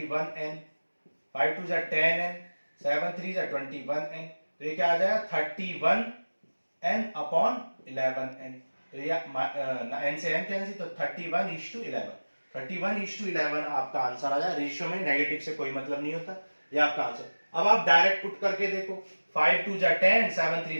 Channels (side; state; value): both; inverted; correlation -1.00